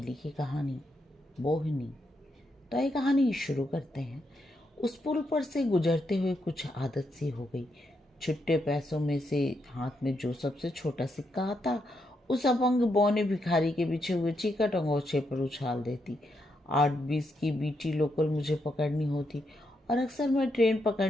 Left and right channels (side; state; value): both; normal; correlation 0.81